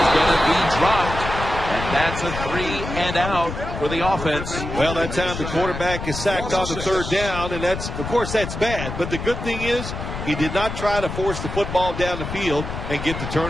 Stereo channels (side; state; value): left; noise; rumble, 6 dB below the sound